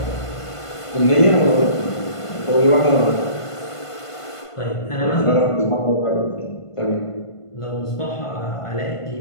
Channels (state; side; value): late; right; 1.5 ms